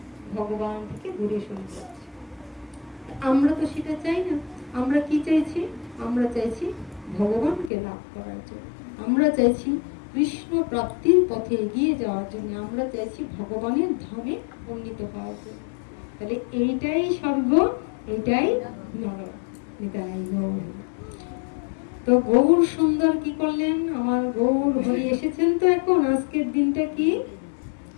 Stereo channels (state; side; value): drops out; right; at 7.7 s